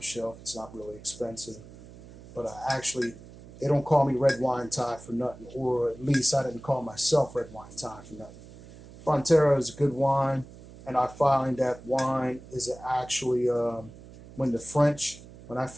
shelf. It's not really expensive, but I actually they don't call me red wine Ty for nothing, or at least I didn't call myself red wine Ty for nothing. Frontera is a good wine, and I find that wine is actually when the French, when I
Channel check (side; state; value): right; noise; hum, 18 dB below the sound